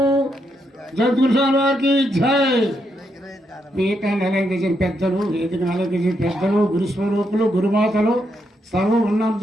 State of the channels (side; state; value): both; normal; correlation 0.80